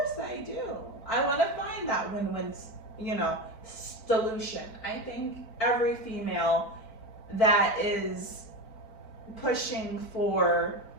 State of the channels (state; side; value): late; right; 4.5 ms